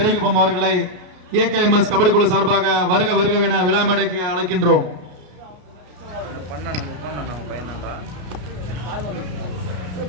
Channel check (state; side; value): late; left; 33 ms